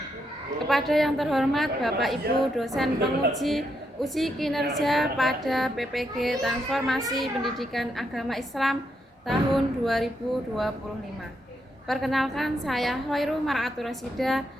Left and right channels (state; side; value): normal; both; correlation 0.80